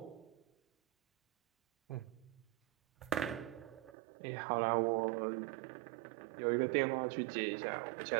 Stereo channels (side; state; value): left; drops out; at 4.0 s